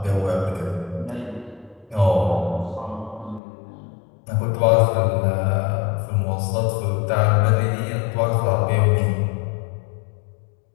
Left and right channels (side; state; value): right; drops out; at 3.4 s